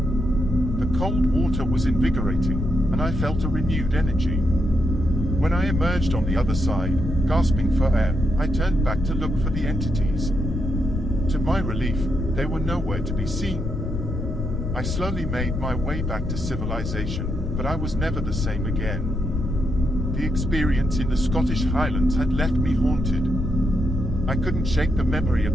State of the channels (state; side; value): noise; left; rumble, 3 dB below the sound